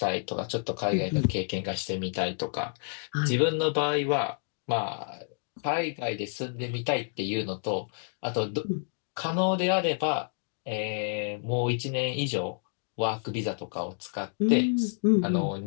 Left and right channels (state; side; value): silent; right; digital silence